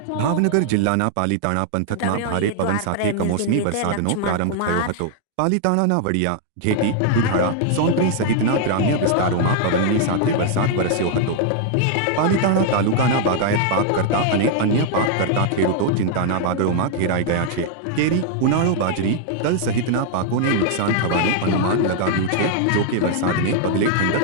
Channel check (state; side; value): different; both; correlation 0.00